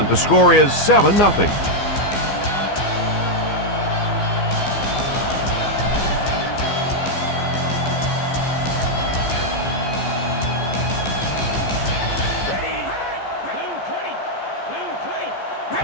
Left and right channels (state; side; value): late; right; 14 ms